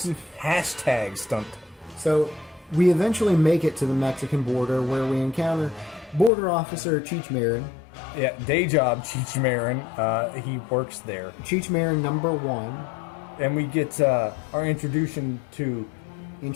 Hashtag stunt. So, we eventually make it to the Mexican border where we encounter Border Officer Cheech Marin. Yeah, day job, Cheech Marin. He works there. Cheech Marin number 1. And we get our introduction to...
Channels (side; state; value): right; drops out; at 6.3 s